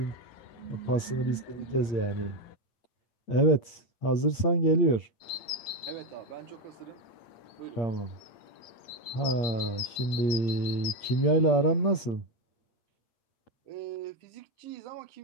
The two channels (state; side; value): late; right; 8.6 ms